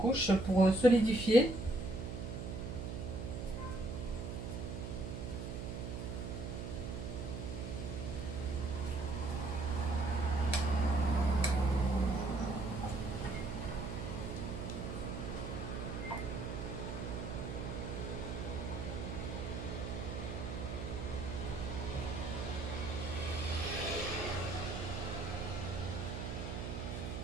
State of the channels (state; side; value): noise; right; hum, 5 dB below the sound